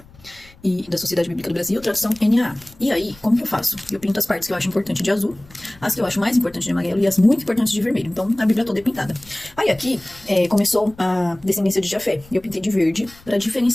e da Sociedade Bíblica do Brasil, tradução NAA. E aí, como que eu faço? Eu pinto as partes que eu acho importante de azul, as que eu acho mais importantes de amarelo e as muito importantes de vermelho. Então, a Bíblia toda é pintada. Aí aqui, começou a descendência de Jafé. E eu pintei de verde para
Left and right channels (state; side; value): noise; left; rumble, 25 dB below the sound